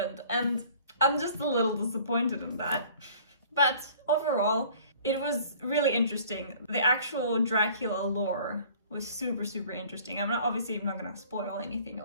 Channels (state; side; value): inverted; both; correlation -0.51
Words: And I'm just a little disappointed in that. But overall, it was really interesting. The actual Dracula lore was super, super interesting. I'm not gonna spoil anything